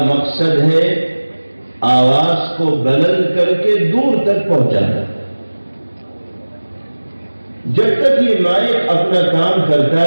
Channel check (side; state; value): both; inverted; correlation -1.00